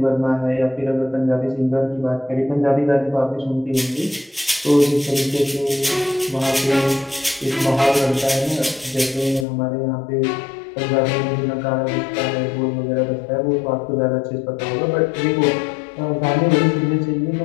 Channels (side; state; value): right; drops out; at 9.5 s